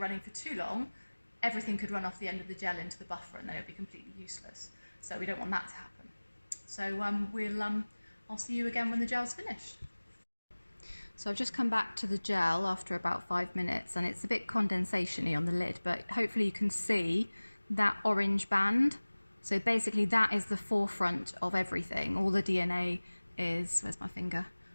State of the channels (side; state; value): both; inverted; correlation -1.00